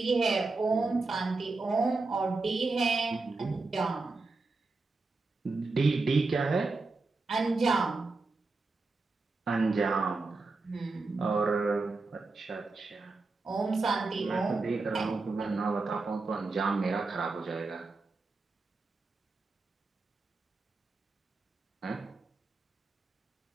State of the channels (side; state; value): left; quieter; 3.7 dB